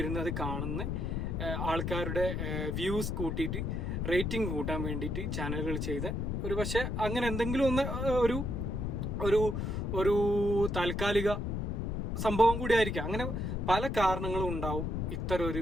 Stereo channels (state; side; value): noise; left; rumble, 1 dB below the sound